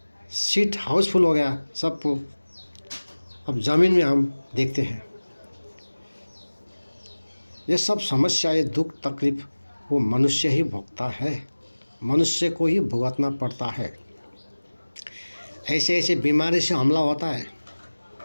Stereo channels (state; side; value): inverted; both; correlation -1.00